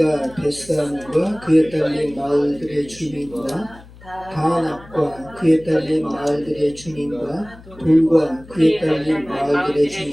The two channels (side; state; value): left; noise; hum, 21 dB below the sound